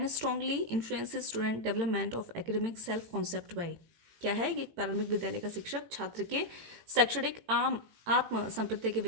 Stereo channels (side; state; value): left; late; 18 ms